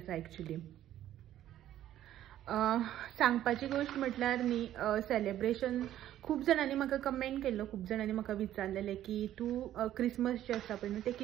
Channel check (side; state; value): left; quieter; 12.3 dB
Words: एक्चुली. सांगपाची गोष्ट म्हटल्यार न्ही, सेलिब्रेशन खूब जाणांनी म्हाका कमेंट केल्लो, खूब जाणांनी म्हाका विचारलेलें की तूं क्रिसमस जे आसा पळय न्हू ते